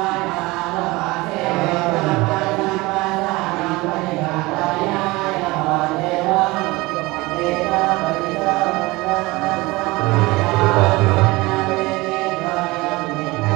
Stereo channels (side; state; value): left; quieter; 21.8 dB